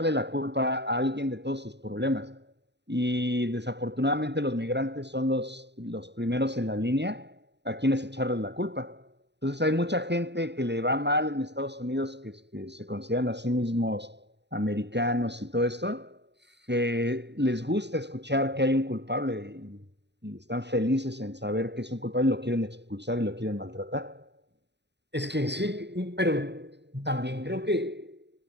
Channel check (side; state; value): left; late; 0.50 ms